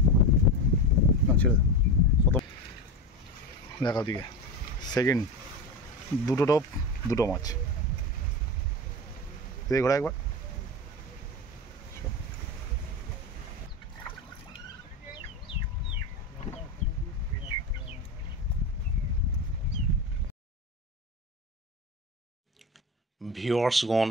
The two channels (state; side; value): normal; both; correlation 0.22